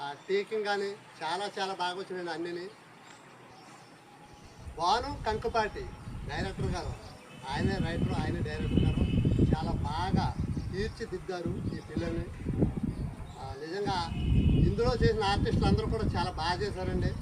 ఆ టేకింగ్ కానీ చాలా చాలా బాగా వచ్చినాయండి. అన్నీ భాను కంకుపాటి డైరెక్టర్ గారు, ఆయనే రైటర్, ఆయనే డైరెక్టర్ గారు చాలా బాగా తీర్చిదిద్దారు ఈ పిల్లల్ని. నిజంగా ఇందులో చేసిన ఆర్టిస్టులు అందరూ కూడా చాలా బాగా చేశారండి.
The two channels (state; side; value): identical; both; correlation 1.00